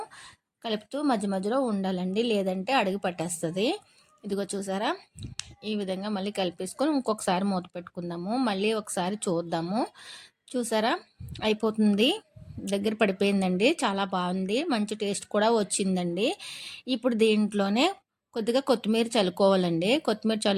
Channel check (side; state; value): both; identical; correlation 1.00